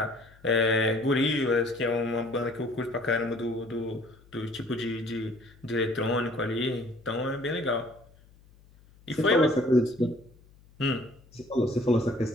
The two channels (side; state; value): left; noise; hum, 27 dB below the sound